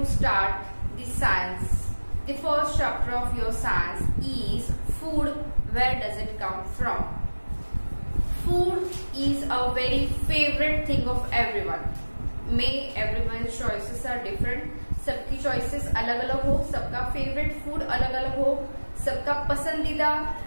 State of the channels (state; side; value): inverted; both; correlation -1.00